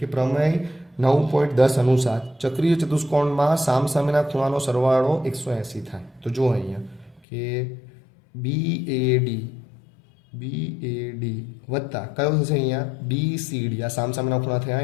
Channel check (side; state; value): right; drops out; at 7.2 s